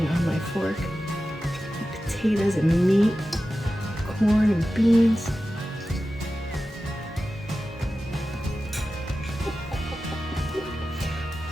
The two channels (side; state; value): both; normal; correlation 0.94